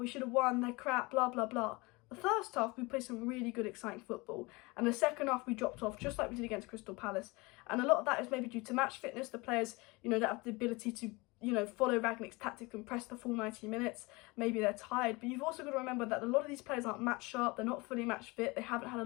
should have won, they're crap, blah, blah, blah. The first half, we played some really good, exciting football. And the second half, we dropped off, just like we did against Crystal Palace. And a lot of that is maybe due to match fitness. The players, you know, don't have the ability to, you know, follow Rangnick's tactics and press the full 90 minutes. Maybe they're tired. But you've also got to remember that a lot of these players aren't match sharp. They're not fully match fit. They haven't had a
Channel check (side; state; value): right; quieter; 24.8 dB